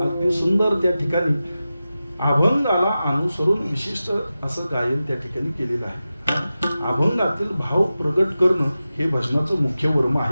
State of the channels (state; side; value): inverted; both; correlation -0.94